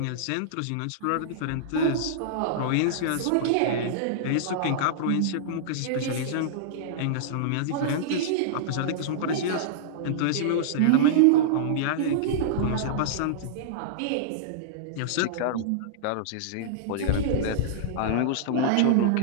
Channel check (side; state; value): both; different; correlation -0.02